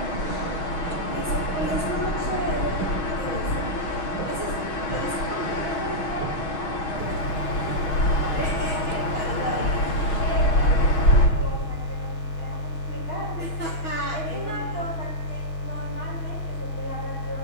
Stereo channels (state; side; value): late; right; 6.2 ms